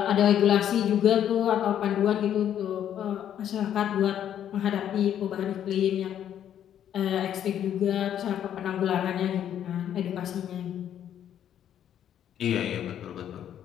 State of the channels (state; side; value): quieter; right; 10.1 dB